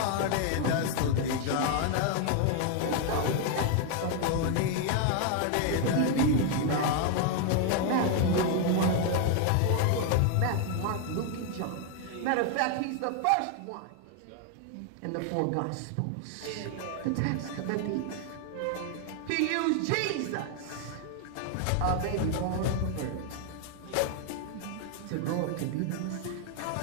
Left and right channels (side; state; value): both; different; correlation 0.00